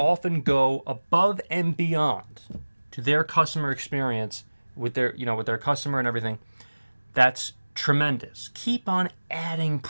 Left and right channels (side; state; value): both; inverted; correlation -1.00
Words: go above and beyond to their customer experience with their customer and everything, that's tremendous. Keep on adding